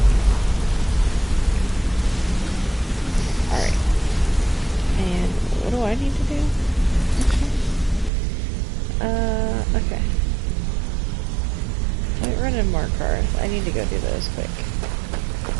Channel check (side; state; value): left; drops out; at 8.1 s